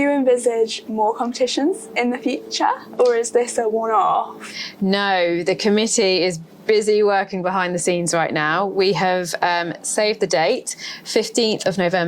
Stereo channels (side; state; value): both; identical; correlation 1.00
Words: envisage more competitions in the future, or is this a one-off? No, the committee is busy working behind the scenes right now. We have saved the date. 15th of